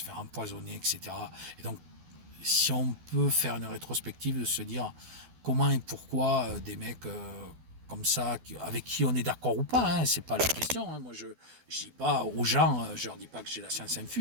faire empoisonner, etc. Et donc, si on peut faire une rétrospective, de se dire comment et pourquoi des mecs comme ça, avec qui on est d'accord ou pas, hein, c'est pas la question. Hein. Moi, je dis pas aux gens, je leur dis pas que j'ai la science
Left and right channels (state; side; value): late; left; 12 ms